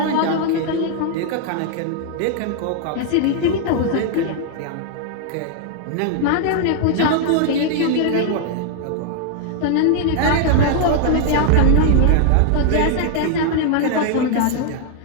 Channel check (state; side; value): different; both; correlation 0.00